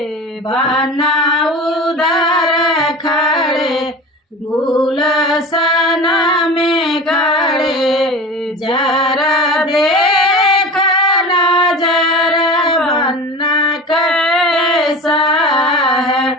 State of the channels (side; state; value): both; normal; correlation 0.33